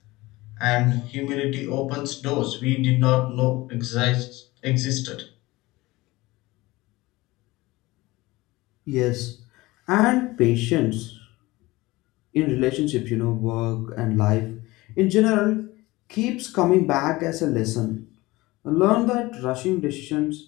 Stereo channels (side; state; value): right; quieter; 20.3 dB